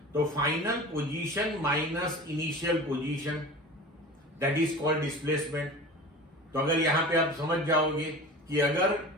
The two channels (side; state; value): both; normal; correlation 0.36